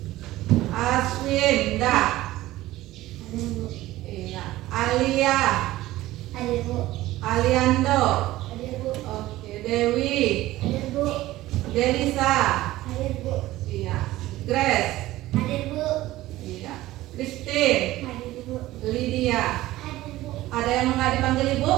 Aswinda, iya. Alia, Aliando, oke. Dewi, Delisa, iya. Grace, iya. Christine, Lydia. Ada yang nggak dipanggil Ibu?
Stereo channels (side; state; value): left; quieter; 16.5 dB